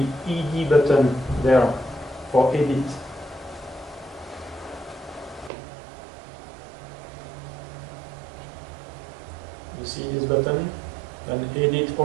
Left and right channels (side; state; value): left; drops out; at 5.5 s